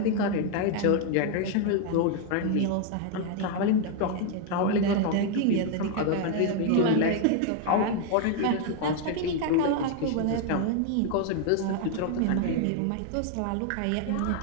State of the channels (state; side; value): different; both; correlation 0.01